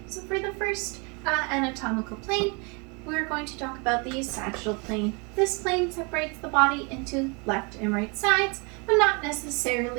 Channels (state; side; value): quieter; left; 31.6 dB